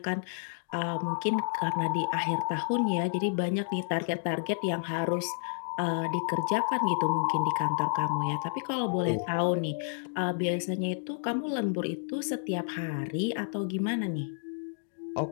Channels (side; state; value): right; silent; digital silence